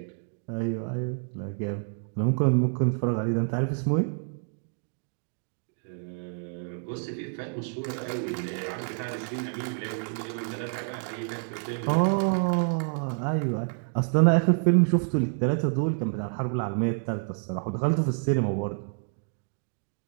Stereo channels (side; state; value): left; silent; 57 dB below the other